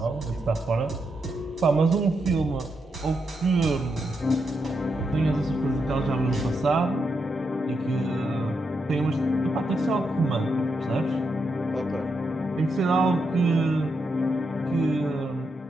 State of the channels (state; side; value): normal; both; correlation 0.83